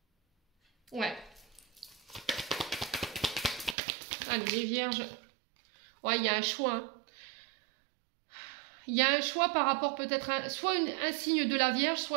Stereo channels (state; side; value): drops out; left; at 3.8 s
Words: Ouais. Allez, les vierges. Ouais, il y a un choix. Hein. Il y a un choix par rapport peut-être à soit un signe de la Vierge,